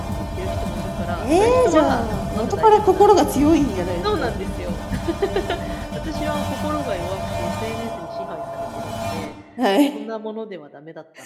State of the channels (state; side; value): identical; both; correlation 1.00